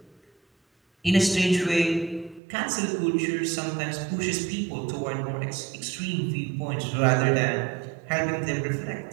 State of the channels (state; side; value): drops out; left; at 2.4 s